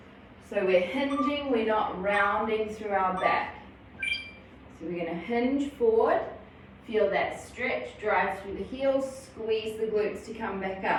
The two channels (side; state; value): both; identical; correlation 1.00